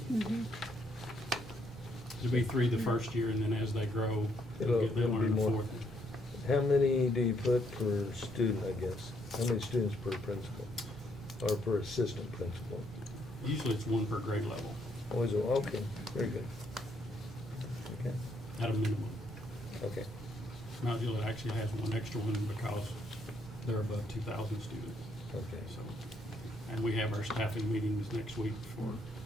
There'll be three the first year, and then as they grow, they'll It'll be learn the more. fourth. How many do you put per student, I guess? How many students per principal, or per assistant principal? Usually it's one per grade level, Always, okay, very good. Okay, at a minimum. okay. Mount Juliet actually has one extra one because they're above 2,000 students. Okay. So, and we have our staffing meetings next week for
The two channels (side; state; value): both; normal; correlation 0.72